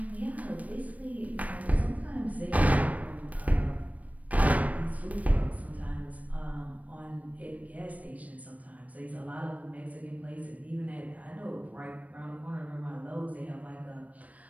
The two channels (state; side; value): late; left; 0.069 ms